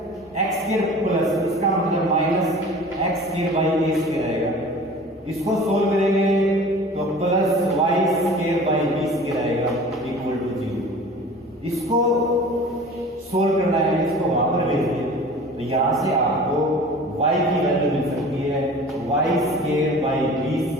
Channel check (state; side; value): normal; both; correlation 0.42